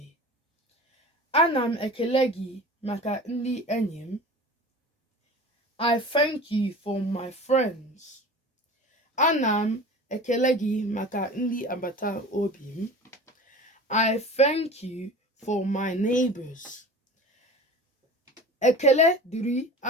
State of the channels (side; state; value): both; normal; correlation 0.37